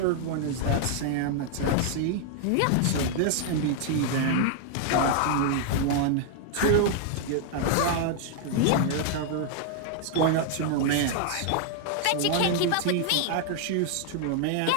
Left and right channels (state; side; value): different; both; correlation 0.00